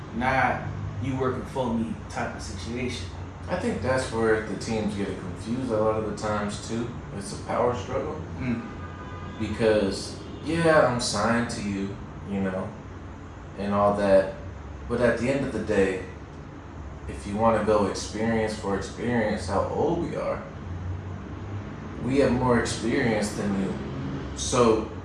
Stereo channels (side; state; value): both; identical; correlation 1.00